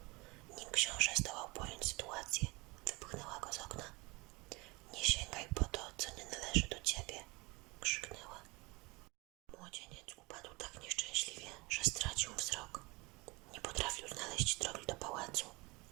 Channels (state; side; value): quieter; left; 25.3 dB